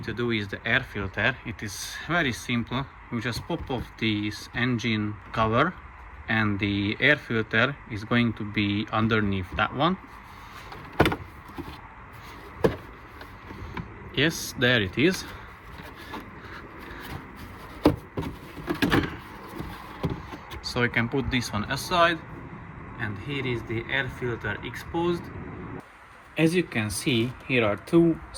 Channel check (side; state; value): both; identical; correlation 1.00